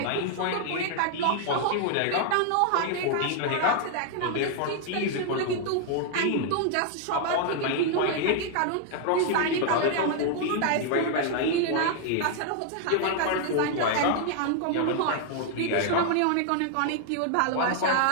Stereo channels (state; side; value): different; both; correlation 0.00